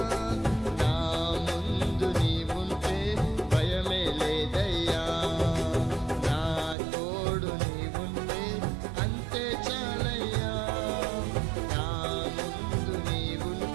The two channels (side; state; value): left; drops out; at 6.8 s